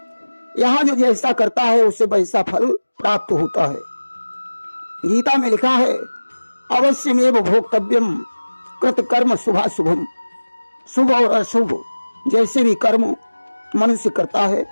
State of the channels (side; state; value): both; inverted; correlation -1.00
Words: यहाँ जो जैसा करता है उसे वैसा फल प्राप्त होता है। गीता में लिखा है, अवश्यमेव भोक्तव्यम कृत कर्म शुभाशुभम। शुभ और अशुभ जैसे भी कर्म मनुष्य करता है